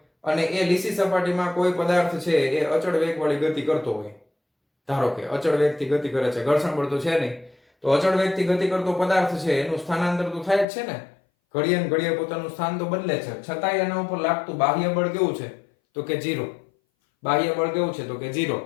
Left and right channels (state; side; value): drops out; right; at 10.7 s